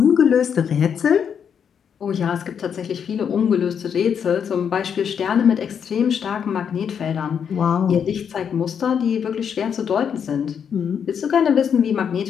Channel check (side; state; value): right; quieter; 7.6 dB